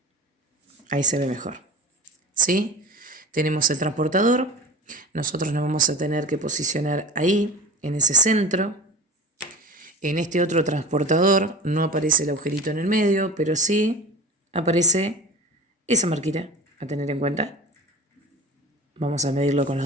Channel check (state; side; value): normal; both; correlation 0.34